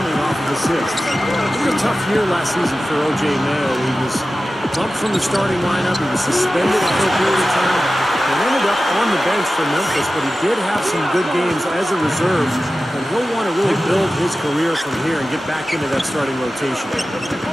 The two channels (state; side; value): normal; both; correlation 0.95